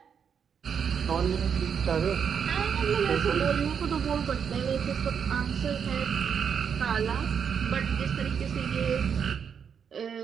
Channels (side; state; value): left; quieter; 7.2 dB